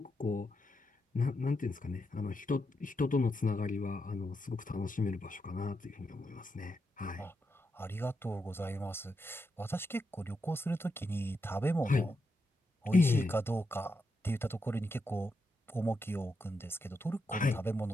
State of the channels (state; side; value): normal; both; correlation 0.84